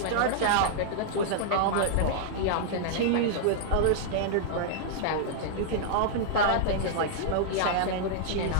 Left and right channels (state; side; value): different; both; correlation -0.01